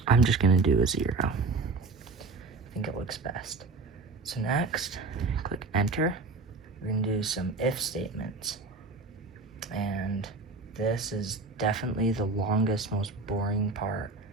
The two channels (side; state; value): left; quieter; 3.8 dB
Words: I'm just gonna do a 0. I think it looks best. So next, click enter. We're gonna do some if statements. And This is definitely the longest, most boring part